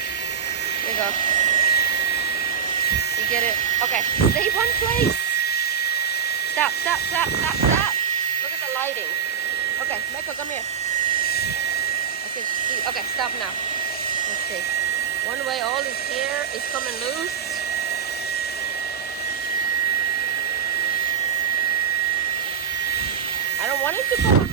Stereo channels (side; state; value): left; quieter; 7.6 dB